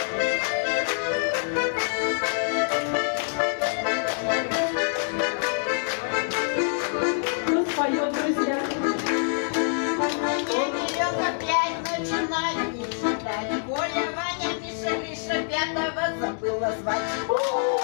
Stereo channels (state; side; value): silent; right; digital silence